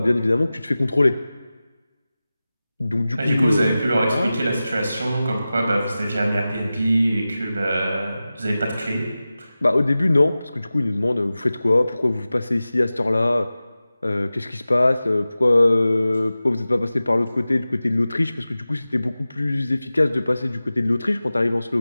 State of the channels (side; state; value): both; inverted; correlation -0.95